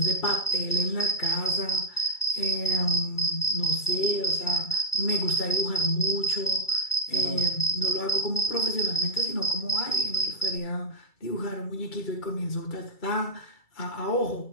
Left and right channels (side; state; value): right; late; 2.3 ms